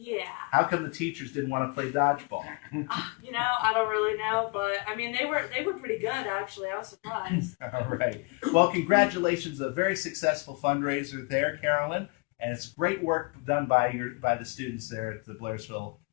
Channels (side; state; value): right; quieter; 29.5 dB